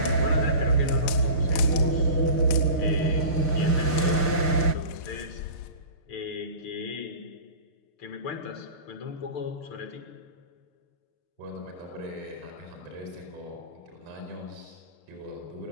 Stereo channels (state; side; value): late; right; 6.7 ms